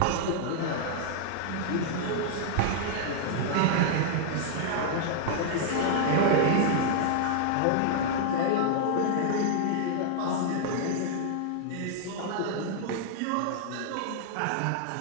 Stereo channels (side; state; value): both; different; correlation -0.01